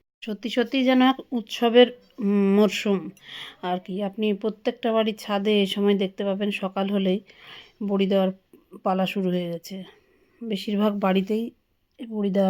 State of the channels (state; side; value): identical; both; correlation 1.00